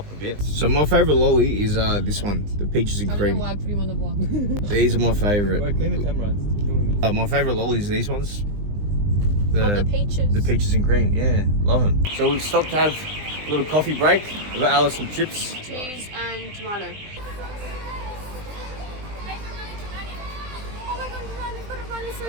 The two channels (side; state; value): left; late; 20 ms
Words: a bit. So my favourite lolly is this one, the peaches and cream. I put him on the vlog. These are my favourite. Clean the camera. It's killing me. My favourite lollies are these ones. the peaches. The peaches and cream, yeah, love them. So we've stopped to have a little coffee break. We've got Alice some chips. Cheese and tomato. Oh my god, I've got to run, I'm